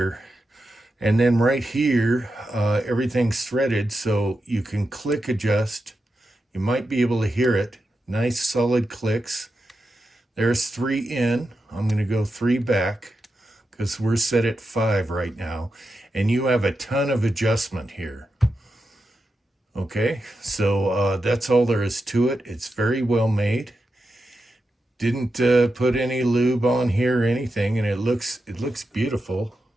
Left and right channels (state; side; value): normal; both; correlation 0.88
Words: And then right here, everything's threaded, so you can click adjust. You might be able to hear it. Nice solid clicks. There's 3 in. I'm going to go 3 back because we're set at 5 right now. And you have a ton of adjustment here. Okay, so that's all there is to it. It's very well made. Didn't put any lube on here or anything, and it looks beautiful.